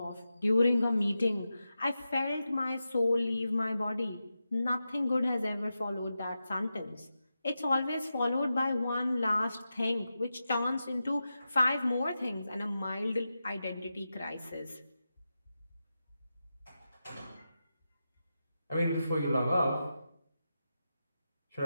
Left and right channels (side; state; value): both; inverted; correlation -0.90